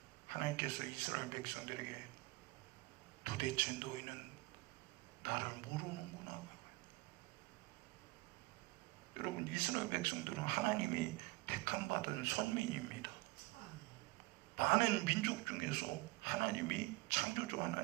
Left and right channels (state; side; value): quieter; left; 22.9 dB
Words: 하나님께서 이스라엘 백성들에게 도대체 너희는 나를 모르는구나. 여러분, 이스라엘 백성들은 하나님이 택함받은 선민입니다. 많은 민족 중에서 하나님이, 창조주